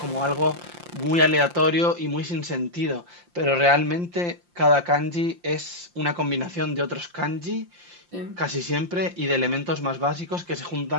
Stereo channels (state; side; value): late; left; 5.7 ms